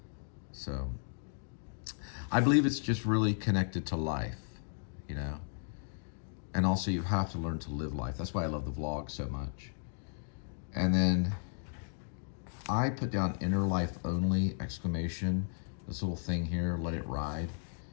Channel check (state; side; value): silent; right; digital silence